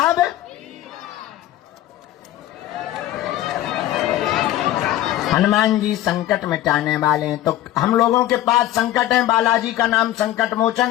हनुमान जी संकट मिटाने वाले हैं। तो हम लोगों के पास संकट है, बालाजी का नाम संकट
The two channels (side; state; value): right; quieter; 13.9 dB